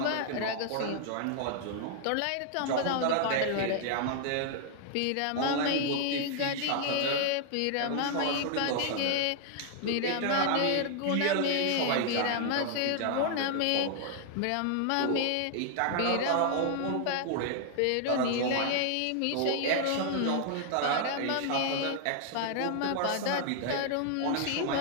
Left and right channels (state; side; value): different; both; correlation 0.00